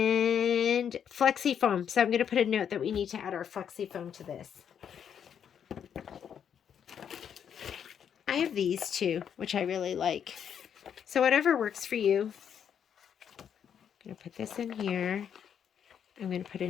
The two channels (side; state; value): right; quieter; 8.3 dB